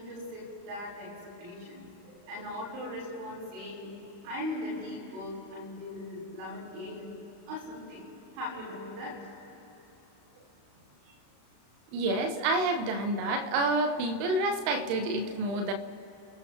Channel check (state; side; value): late; left; 35 ms